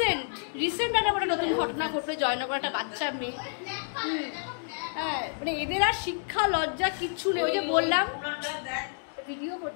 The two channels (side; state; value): right; silent; digital silence